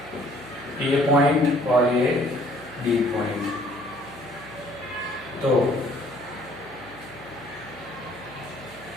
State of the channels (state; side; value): noise; right; hum, 22 dB below the sound